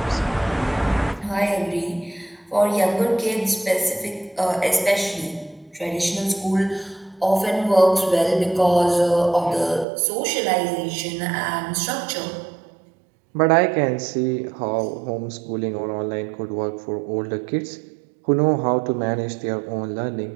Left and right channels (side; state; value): left; drops out; at 9.9 s